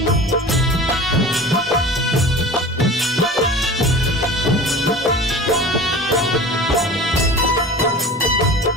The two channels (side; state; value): both; normal; correlation 0.38